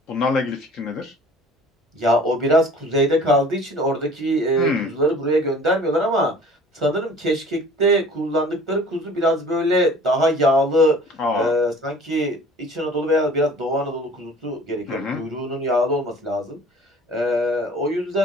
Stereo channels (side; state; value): both; normal; correlation 0.48